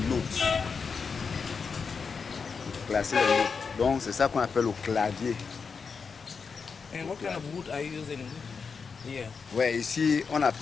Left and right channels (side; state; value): right; quieter; 5.4 dB